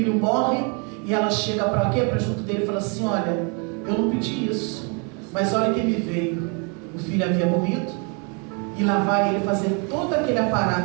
morre, e ela chega para quê? Para junto dele e fala assim: olha, eu não pedi isso, mas olha quem me veio. O filho havia morrido, e lá vai ele fazer todo aquele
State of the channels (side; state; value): left; quieter; 35.2 dB